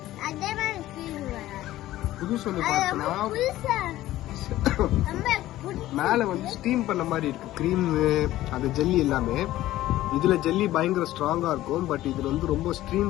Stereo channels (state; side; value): quieter; right; 15.1 dB